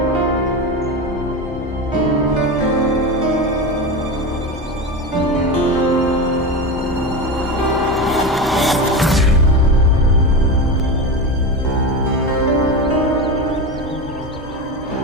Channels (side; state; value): both; normal; correlation 0.21